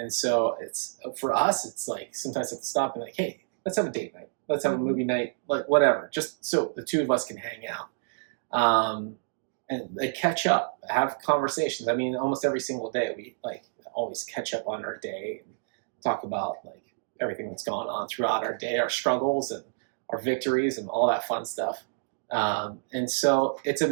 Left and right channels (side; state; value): left; silent; digital silence